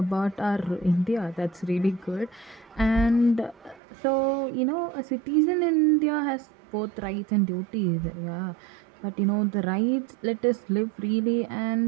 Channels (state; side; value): drops out; left; at 3.8 s